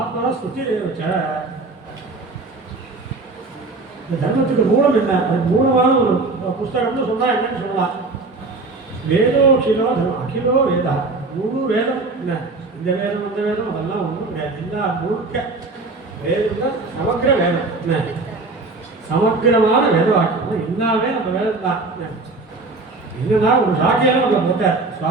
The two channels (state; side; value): quieter; left; 3.5 dB